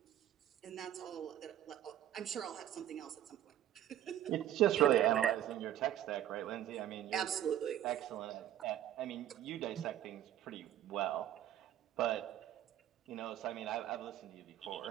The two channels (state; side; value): quieter; left; 11.8 dB